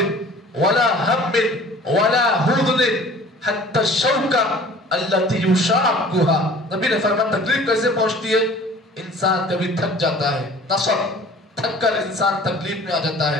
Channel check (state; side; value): normal; both; correlation 0.48